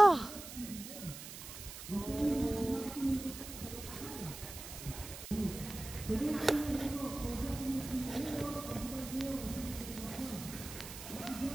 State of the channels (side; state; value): right; noise; hiss, 11 dB below the sound